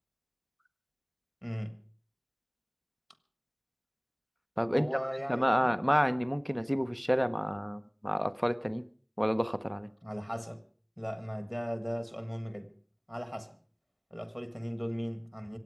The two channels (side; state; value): both; identical; correlation 1.00